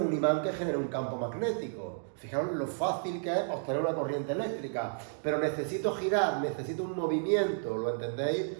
un imán que genere un campo magnético. Fijaros lo fácil que es obtener una corriente eléctrica. Pero necesito girar, necesito un movimiento, ¿lo entendéis?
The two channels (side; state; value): left; silent; digital silence